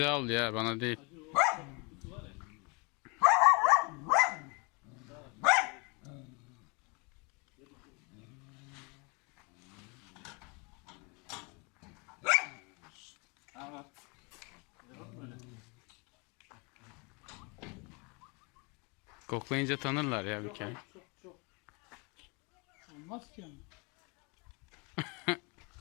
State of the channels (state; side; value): quieter; right; 30.7 dB